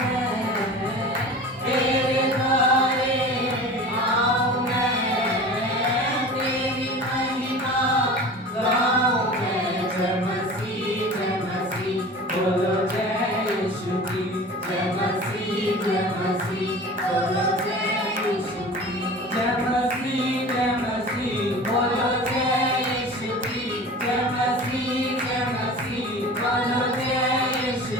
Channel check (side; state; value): both; normal; correlation 0.38